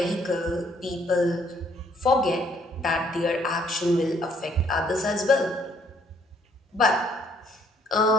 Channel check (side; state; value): both; normal; correlation 0.65